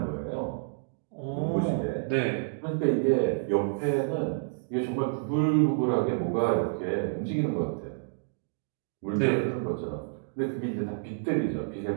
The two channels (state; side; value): silent; left; digital silence